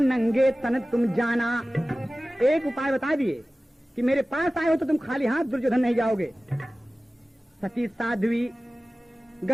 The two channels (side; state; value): both; normal; correlation 0.97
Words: नंगे तन तुम जाना। एक उपाय बता दिए कि मेरे पास आए हो तो तुम खाली हाथ दुर्योधन नहीं जाओगे। सती साध्वी